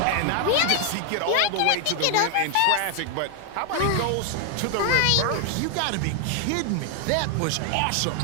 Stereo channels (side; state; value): both; different; correlation 0.00